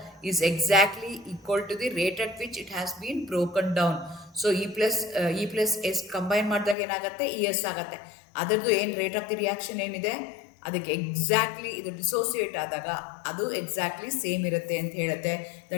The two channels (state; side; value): drops out; right; at 6.8 s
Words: is exactly equal to the rate at which it has been broken down. So E plus S combine ಮಾಡಿದಾಗ ಏನಾಗುತ್ತೆ, ES ಆಗುತ್ತೆ. ಅದರದ್ದು ಏನು rate of the reaction ಏನಿದೆ, ಅದಕ್ಕೆ exactly ಇದು dissociate ಆದಾಗ ಅದು ಎಕ್ಸಾಕ್ಟ್ಲಿ ಸೇಮ್ ಇರುತ್ತೆ ಅಂತ ಹೇಳುತ್ತೆ.